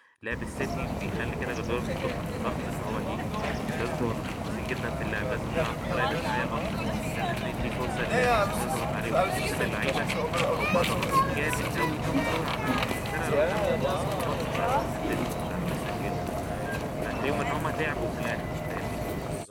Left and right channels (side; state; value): both; identical; correlation 1.00